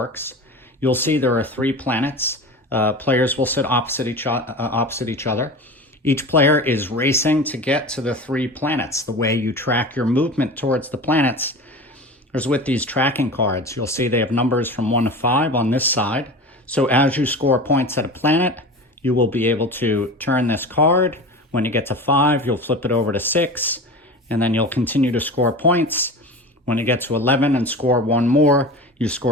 You'll see there are 3 planets. Players will sit opposite each other. Each player is racing to get to the 3 planets. The way you track your movement towards the planets is with these tracking cards. You'll see they have numbers from 1 to 5 on this side. So as you score points at a planet, you will be able to turn this card. When you get to 5, you'll flip it over to 6, and then you'll continue to score points. When you get to 11 and score 1 more, you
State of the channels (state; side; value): normal; both; correlation 0.32